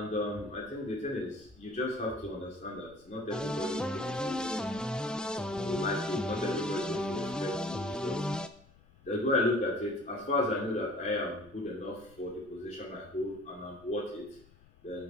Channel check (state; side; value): noise; left; rumble, 25 dB below the sound